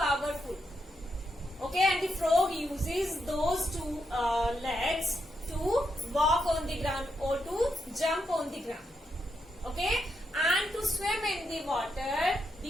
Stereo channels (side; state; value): both; normal; correlation 0.82